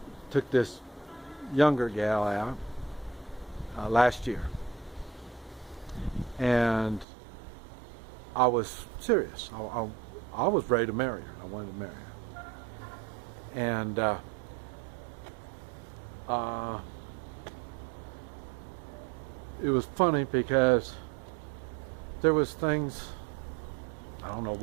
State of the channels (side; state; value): left; drops out; at 7.1 s